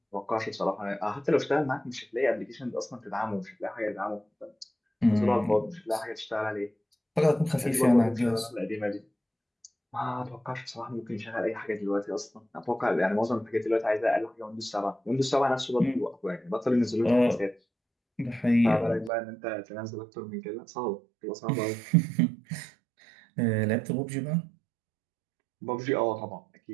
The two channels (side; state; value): left; drops out; at 19.1 s